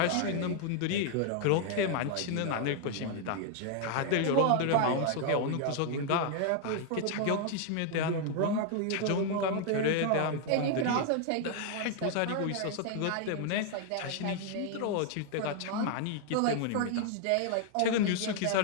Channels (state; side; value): different; both; correlation 0.00